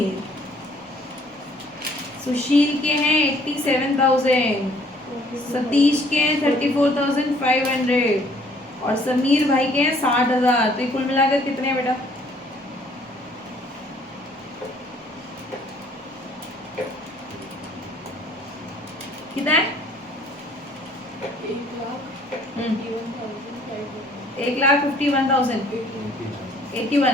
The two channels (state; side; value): normal; both; correlation 0.59